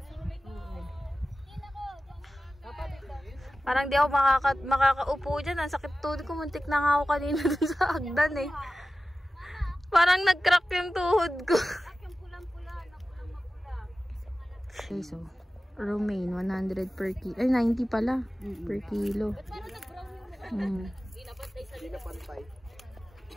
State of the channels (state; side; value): normal; both; correlation 0.95